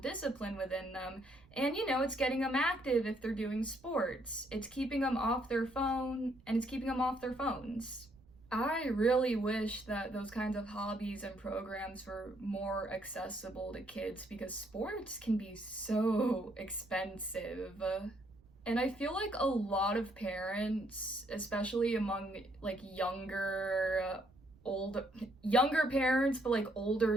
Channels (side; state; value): right; noise; rumble, 27 dB below the sound